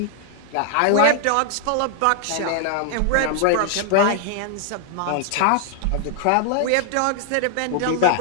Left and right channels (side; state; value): both; different; correlation 0.00